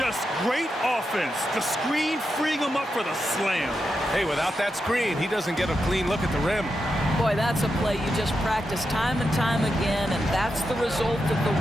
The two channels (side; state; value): both; normal; correlation 0.87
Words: great offense. The screen freeing him up for the slam. Hey, without that screen, he doesn't get a clean look at the rim. Boy, that's a play you just practice time and time again, and that's the result of the